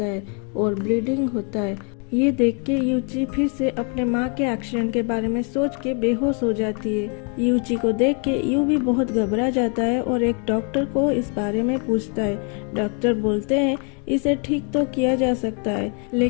है और ब्लीडिंग होता है। ये देख के यूची फिर से अपने माँ के एक्सीडेंट के बारे में सोच के बेहोश हो जाती है। यूची को देख के यू भी बहुत घबरा जाता है और एक डॉक्टर को इस बारे में पूछता है। डॉक्टर बोलते हैं इसे ठीक तो किया जा सकता है,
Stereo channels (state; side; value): quieter; right; 38.2 dB